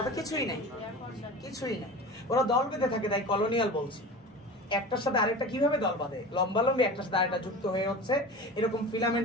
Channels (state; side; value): normal; both; correlation 0.33